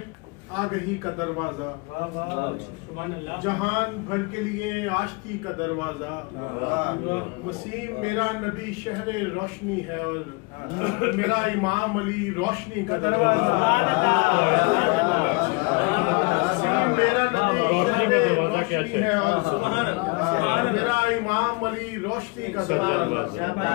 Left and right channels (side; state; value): right; quieter; 28.6 dB